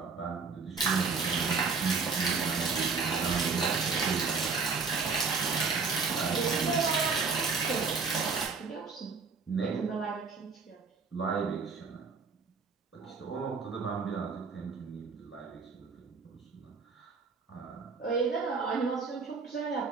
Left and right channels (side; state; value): left; quieter; 4.9 dB